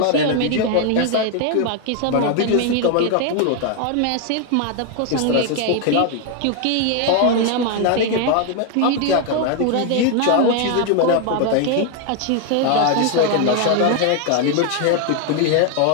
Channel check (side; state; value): both; different; correlation 0.01